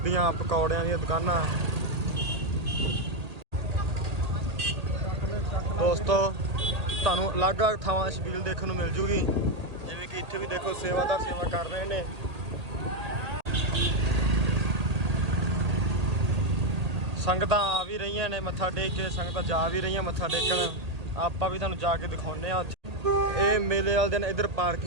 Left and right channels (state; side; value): late; left; 1.8 ms